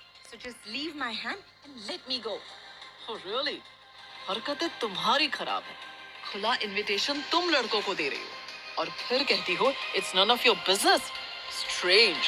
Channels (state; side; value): identical; both; correlation 1.00